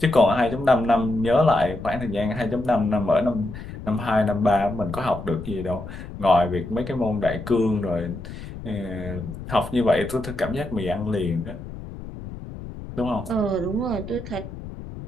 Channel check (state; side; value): noise; left; rumble, 11 dB below the sound